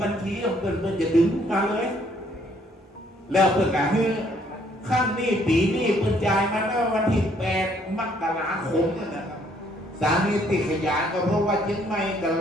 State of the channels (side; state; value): both; normal; correlation 0.66